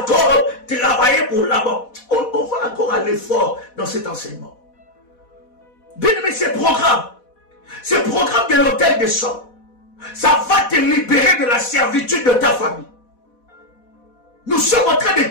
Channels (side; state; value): right; late; 4.1 ms